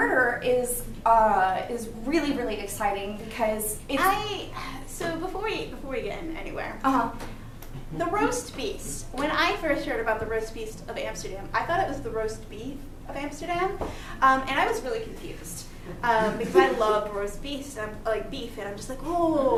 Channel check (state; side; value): identical; both; correlation 1.00